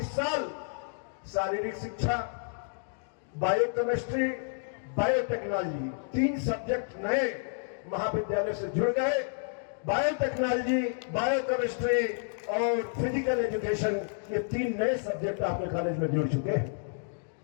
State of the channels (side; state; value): right; silent; digital silence